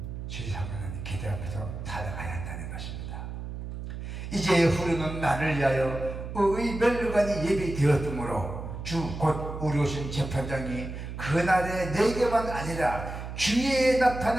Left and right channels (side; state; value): right; noise; hum, 8 dB below the sound